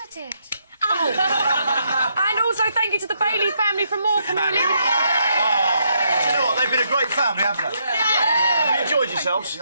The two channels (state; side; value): inverted; both; correlation -0.76